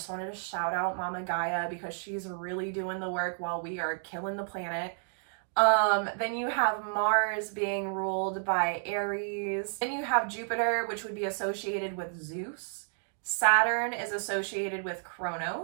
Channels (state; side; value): silent; left; digital silence